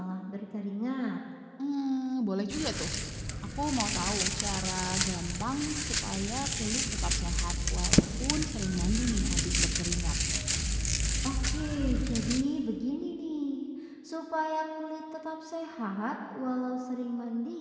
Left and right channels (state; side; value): identical; both; correlation 1.00